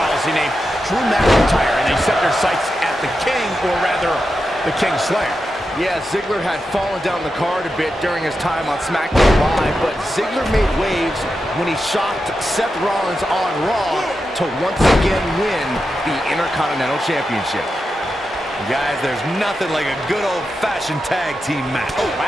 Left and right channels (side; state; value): both; normal; correlation 0.89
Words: named Drew McIntyre, and they set their sights at the King, or rather, the King Slayer. Yeah, Ziggler had fallen down the card a bit during his time on SmackDown Live, but Ziggler made waves when he shocked Seth Rollins on Raw to once again win the Intercontinental Championship. Guys, there's nothing like a good old-fashioned tag team match.